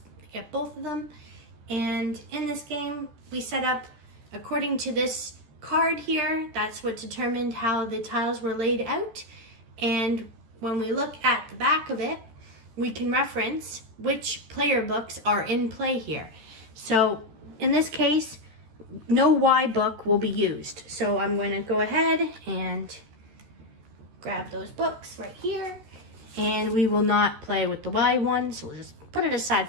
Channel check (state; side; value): late; left; 14 ms